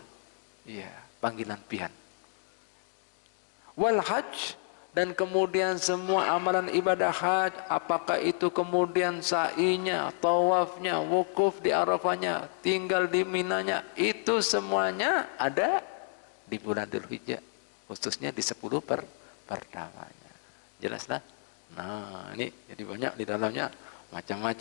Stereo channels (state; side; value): silent; right; 57 dB below the other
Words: Iya, panggilan pian. Wal hajj, dan kemudian semua amalan ibadah haji, apakah itu kemudian sa'inya, tawafnya, wukuf di Arafahnya, tinggal di Minanya, itu semuanya ada di bulan Dzulhijjah, khususnya di 10 pertamanya. Jelaslah? Nah, ini jadi banyak di dalamnya